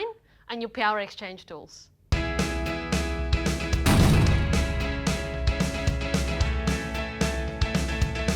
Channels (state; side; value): identical; both; correlation 1.00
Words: and your power exchange tools. So